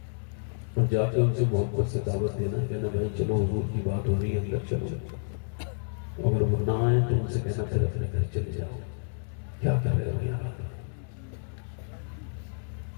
اور جا کے ان سے محبت سے دعوت دینا، کہنا بھائی چلو حضور کی بات ہو رہی ہے اندر چلو. اگر وہ نہ آئے تو ان سے کہنا پھر اپنے گھر چلے جاؤ. کیا کر رہے ہو یہاں؟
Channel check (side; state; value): right; silent; digital silence